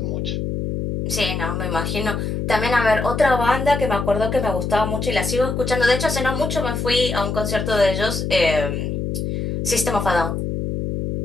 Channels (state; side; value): noise; left; hum, 2 dB below the sound